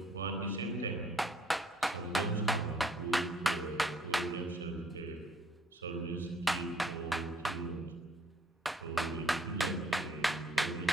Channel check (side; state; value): both; normal; correlation 0.62